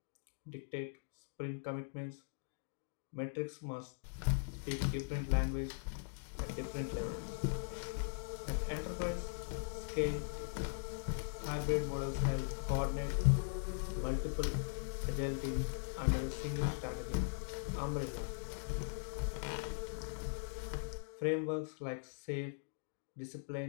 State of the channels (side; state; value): right; silent; digital silence